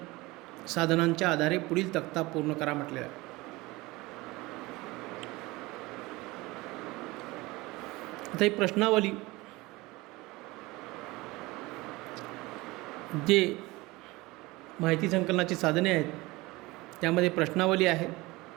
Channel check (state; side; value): quieter; left; 21.6 dB